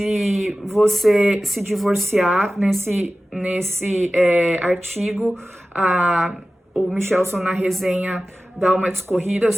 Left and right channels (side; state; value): both; normal; correlation 0.96